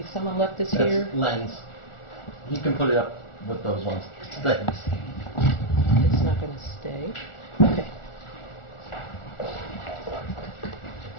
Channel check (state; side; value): late; right; 1.4 ms